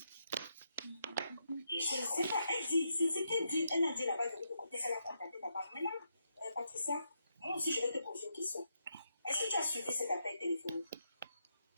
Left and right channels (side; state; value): both; inverted; correlation -0.81